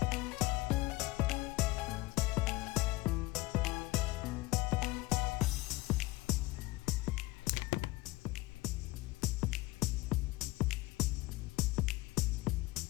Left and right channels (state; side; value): quieter; right; 20.3 dB